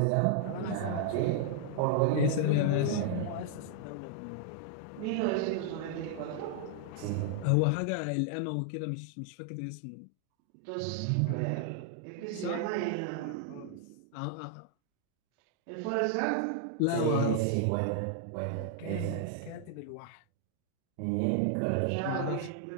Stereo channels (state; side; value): different; both; correlation 0.00